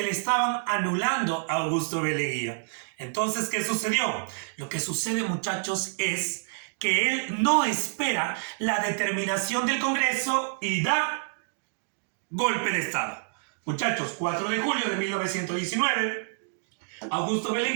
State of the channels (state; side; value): silent; left; digital silence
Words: le estaban anulando a Augusto B. Leguía. Entonces, ¿qué sucedió? Lo que sucede, muchachos, es que él no espera la determinación del Congreso y da golpe de Estado. Muchachos, 4 de julio de 1919... Augusto B.